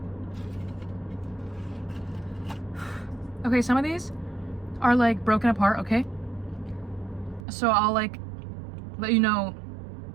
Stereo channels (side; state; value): left; drops out; at 7.4 s